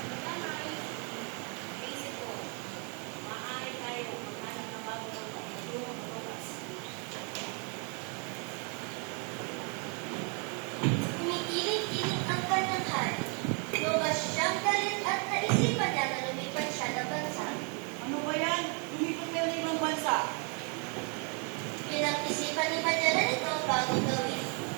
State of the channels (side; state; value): left; quieter; 36.7 dB